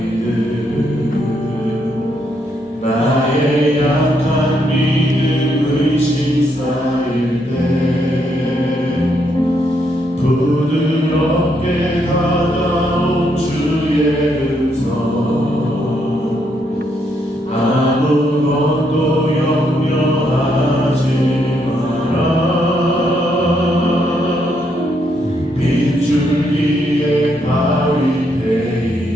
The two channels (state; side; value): normal; both; correlation 0.76